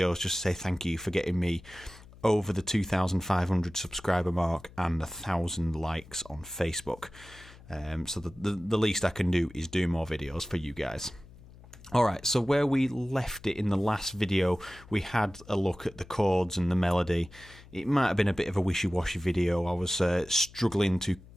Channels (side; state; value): left; noise; hum, 21 dB below the sound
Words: just to say thank you for getting me over the 2,500 subscriber mark and 1,000 likes on Facebook. So the least I can do is do more videos for you guys. Alright, so where we left it in the last video, we had a look at the chords and the melody. It might have been a bit of a wishy-washy video. I was struggling to